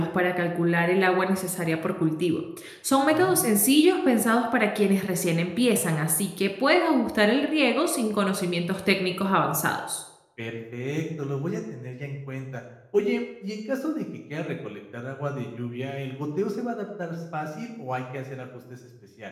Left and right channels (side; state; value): both; identical; correlation 1.00